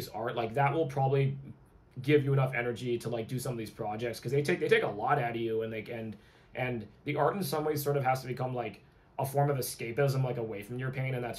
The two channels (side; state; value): both; identical; correlation 1.00